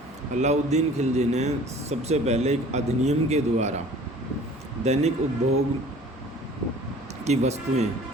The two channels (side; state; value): both; normal; correlation 0.48